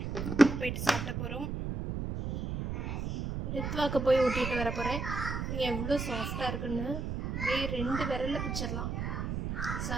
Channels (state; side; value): noise; right; rumble, 3 dB below the sound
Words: போயிட்டு சாப்பிட போகிறோம். ரித்வாக்கு போய் ஊட்டிட்டு வர போகிறேன். எவ்வளோ சாஃப்டாக இருக்குன்னு அப்படியே 2 விரலில் பிச்சிடலாம்.